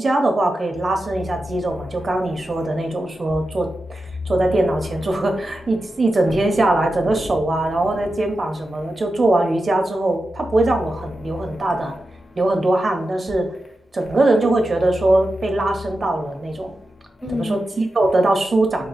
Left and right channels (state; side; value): normal; both; correlation 0.91